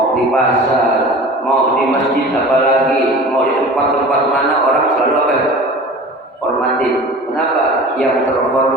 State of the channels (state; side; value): normal; both; correlation 0.39